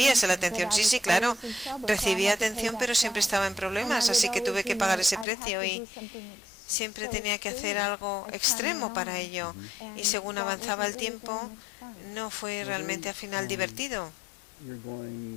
esa atención. Sí, claro, recibía atención, pero siempre estaba en problemas, así que tuve que pagar ese precio y siempre tenía que hacer algo extremo para ello. Y según avanzaba el tiempo, no fue realmente al final divertido.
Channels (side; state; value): right; drops out; at 5.2 s